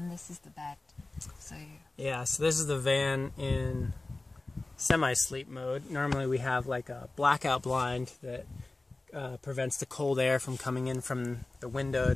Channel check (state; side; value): quieter; right; 3.1 dB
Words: this is the bed. So yeah, so this is the van in semi-sleep mode. Normally we have like a blackout blind that prevents the cold air from coming in from the